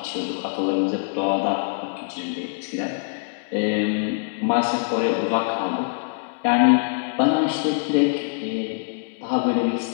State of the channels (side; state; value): right; silent; digital silence